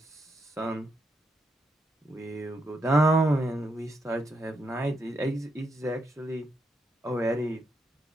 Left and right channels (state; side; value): normal; both; correlation 0.80